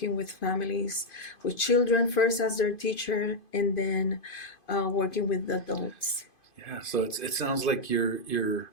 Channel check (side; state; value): right; late; 2.5 ms